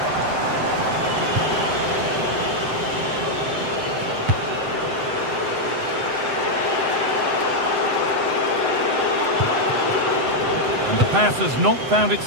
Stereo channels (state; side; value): late; left; 7.8 ms